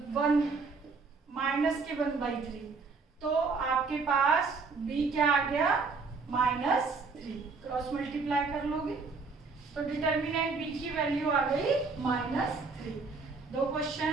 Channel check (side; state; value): left; quieter; 4.4 dB